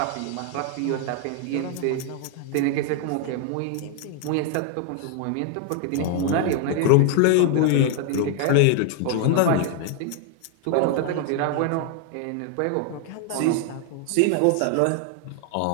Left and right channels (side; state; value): both; different; correlation 0.00